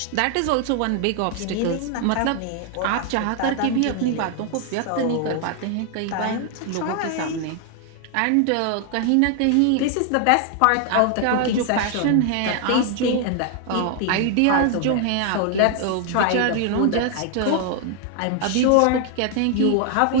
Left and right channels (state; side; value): different; both; correlation 0.00